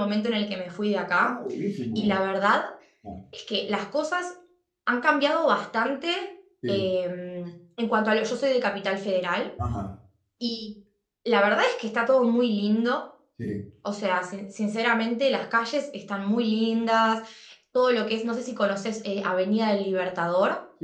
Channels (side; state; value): both; identical; correlation 1.00